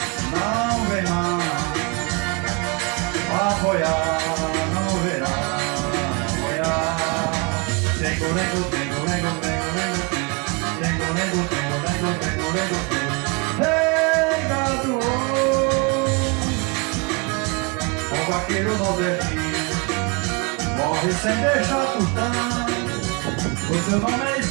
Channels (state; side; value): quieter; left; 31.4 dB